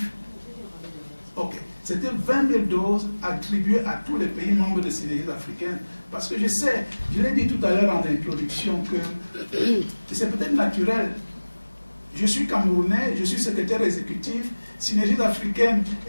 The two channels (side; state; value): both; inverted; correlation -1.00